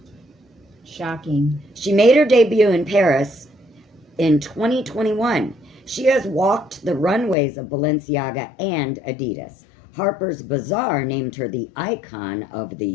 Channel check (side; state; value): right; drops out; at 7.4 s